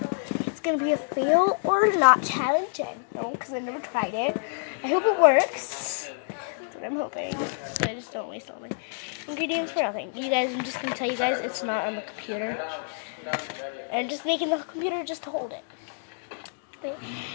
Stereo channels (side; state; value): right; silent; digital silence